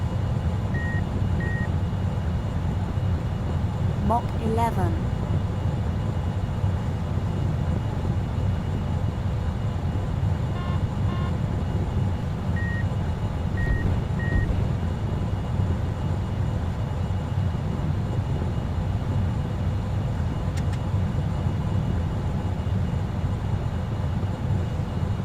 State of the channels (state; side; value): identical; both; correlation 1.00